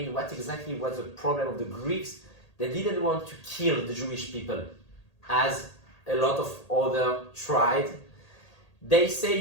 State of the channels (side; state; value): right; late; 1.8 ms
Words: what exactly was the problem of the Greeks. They didn't want to kill the Jewish people, as a lot of other tried. They